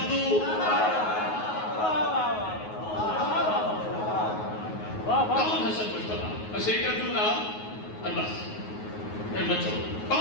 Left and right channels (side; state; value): right; late; 9.4 ms